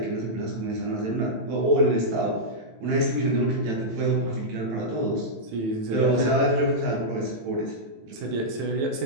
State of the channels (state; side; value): late; left; 18 ms